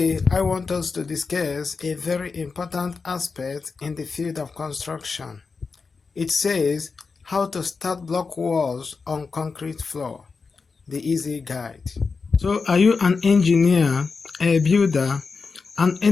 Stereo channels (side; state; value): right; quieter; 4.7 dB